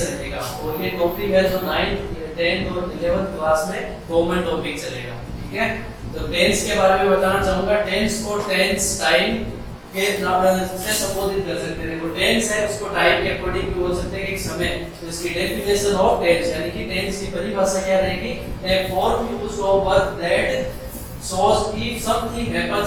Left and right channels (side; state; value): both; identical; correlation 1.00